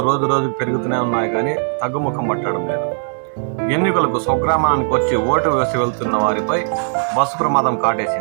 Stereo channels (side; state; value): left; silent; digital silence